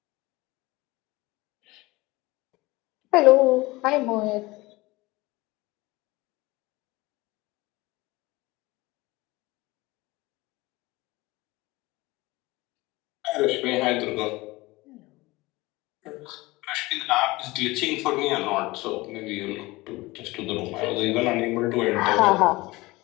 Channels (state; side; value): quieter; right; 21.2 dB